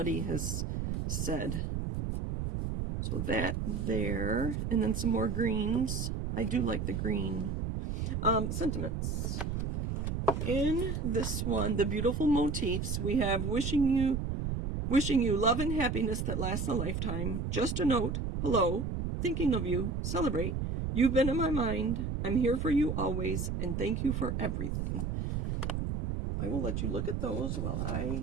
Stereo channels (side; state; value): right; noise; rumble, 2 dB below the sound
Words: has said. So that there, and then some more greens. I do like the green. Sentiments. In this one, the beautiful motifs, we have wishing you love and happiness that lasts a lifetime. Just a note, hello, thinking of you, celebrate. You've been in my mind. I'm here for you always, and thank you for everything. I will let you look at those while